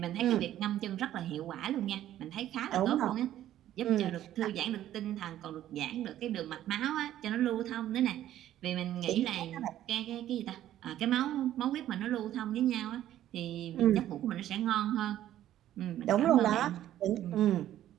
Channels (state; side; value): quieter; left; 12.5 dB